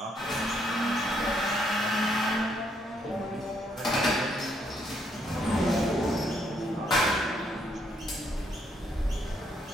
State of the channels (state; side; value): normal; both; correlation 0.72